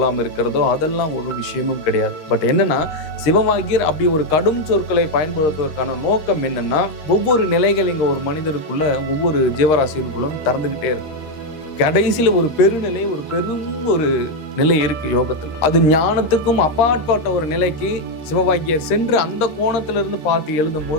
இருக்கிறதோ, அதெல்லாம் ஒரு விஷயமும் கிடையாது. பட் என்னன்னா, சிவவாகியர் அப்படி ஒரு கடும் சொற்களை பயன்படுத்துவதற்கான நோக்கம் என்னன்னா, ஒவ்வொரு நிலைகள் இங்கே ஒரு மனிதருக்குள்ள ஒவ்வொரு ஜீவராசிகளுக்குள்ளும் திறந்துகிட்டே இருக்கும். கடைசியில் ஒரு பெருநிலை, ஒரு பெரும் ஒரு நிலை இருக்கு யோகத்தில். அது ஞானத்துக்கும் அப்பாற்பட்ட ஒரு நிலைக்கு சிவவாகியர் சென்று அந்த கோணத்திலிருந்து பார்த்து எழுதும்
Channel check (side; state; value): right; late; 13 ms